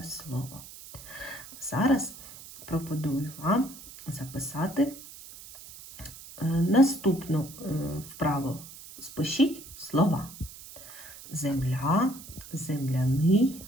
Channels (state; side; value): noise; right; hiss, 16 dB below the sound